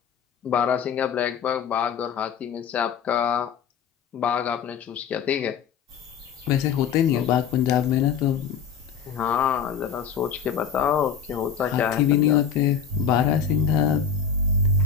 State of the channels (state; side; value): quieter; right; 7.0 dB